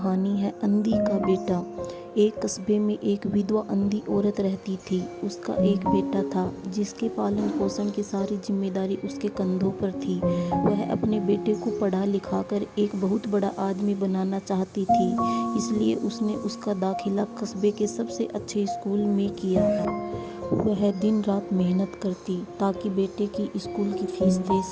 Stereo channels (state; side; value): identical; both; correlation 1.00